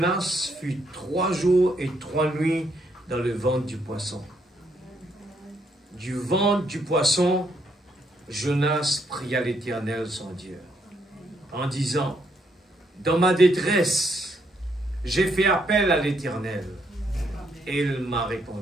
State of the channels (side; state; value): both; normal; correlation 0.74